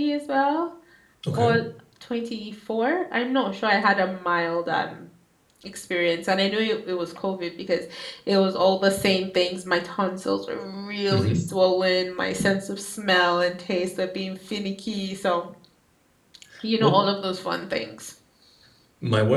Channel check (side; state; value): both; identical; correlation 1.00